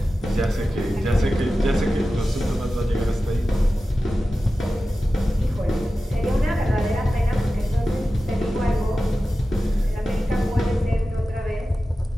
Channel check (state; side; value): normal; both; correlation 0.94